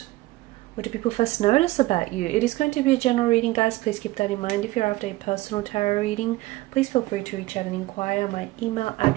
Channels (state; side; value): quieter; left; 19.0 dB